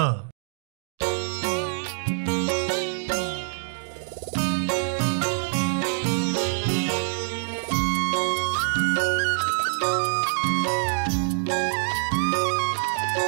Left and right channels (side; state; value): left; silent; 61 dB below the other